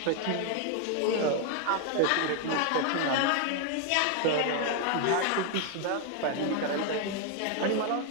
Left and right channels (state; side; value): different; both; correlation 0.01